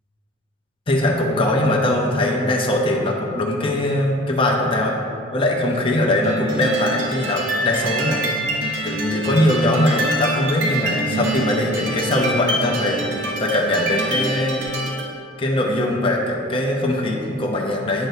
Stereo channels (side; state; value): both; normal; correlation 0.44